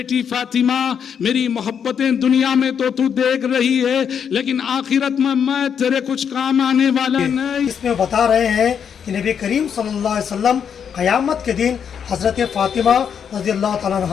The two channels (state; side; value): quieter; right; 7.6 dB